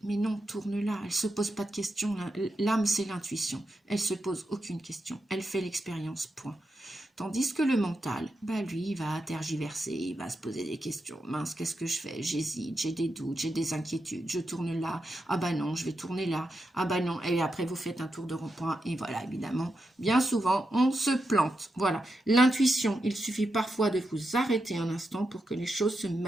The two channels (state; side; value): normal; both; correlation 0.87